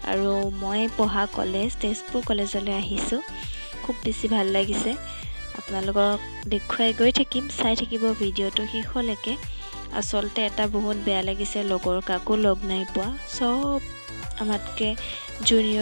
আৰু মই পঢ়া কলেজ তেজপুৰ কলেজলৈ আহিছোঁ। খুব বেছি ভাল লাগিছে। আপোনালোকক দেখুৱাই গৈ থাকিম, চাই থাকিব ভিডিঅ'টো শেষলৈকে। আচলতে এটা বহুত বেয়া লাগিছে, লগৰ কাকো লগ নাই পোৱা। চব আমাতকৈ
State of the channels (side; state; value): both; inverted; correlation -1.00